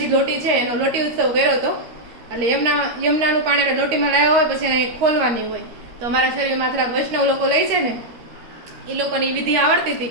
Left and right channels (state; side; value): late; left; 13 ms